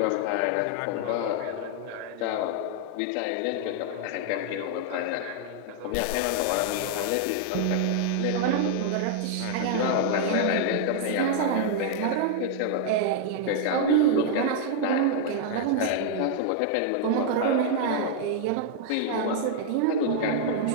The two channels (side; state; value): both; different; correlation -0.01